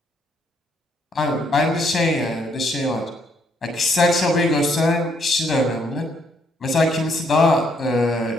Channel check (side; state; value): both; normal; correlation 0.71